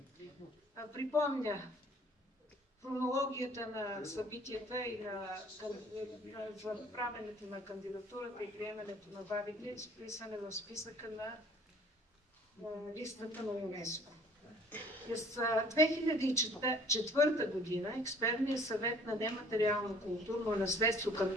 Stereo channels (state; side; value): normal; both; correlation 0.53